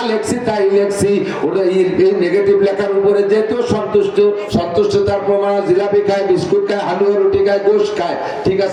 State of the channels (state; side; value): identical; both; correlation 1.00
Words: লেখছি তাই লেখছি। ওটা এই নেগেটিভ লেখার উপরে যেহেতু সন্তুষ্টতার প্রমাণ, জিলাপি খায়, বিস্কুট খায়, হালুয়া রুটি খায়, গোশ খায়, ঠিক